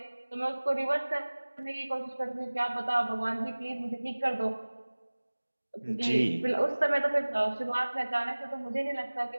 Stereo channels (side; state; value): both; inverted; correlation -1.00